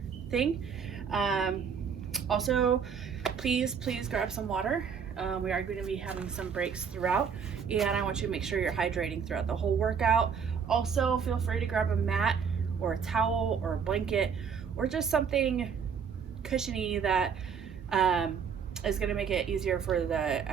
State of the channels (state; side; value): quieter; left; 6.7 dB